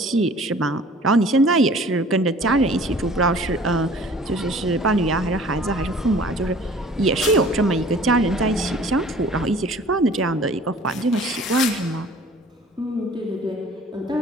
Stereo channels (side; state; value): both; normal; correlation 0.49